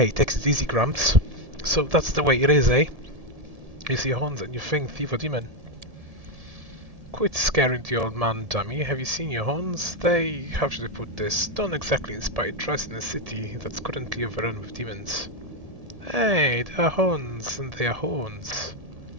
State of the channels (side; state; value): left; late; 1.7 ms